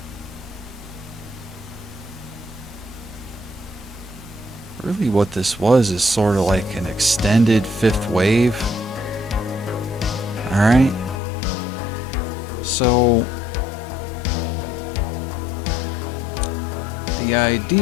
really what this was is sort of like an extended fifth wave. All right. So the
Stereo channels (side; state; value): right; drops out; at 11.2 s